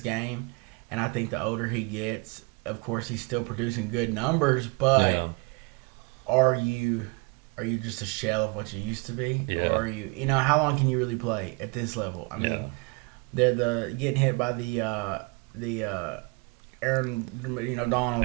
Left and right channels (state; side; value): quieter; left; 29.7 dB